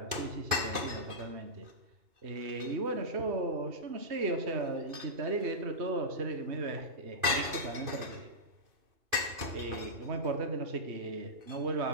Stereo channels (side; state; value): left; late; 2.5 ms